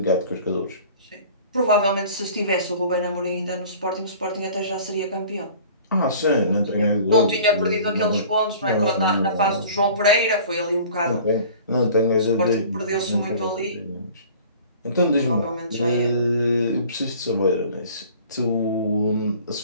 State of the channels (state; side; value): inverted; both; correlation -0.46